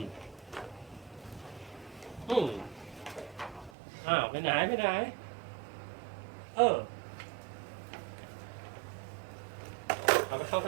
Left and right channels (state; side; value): drops out; left; at 3.7 s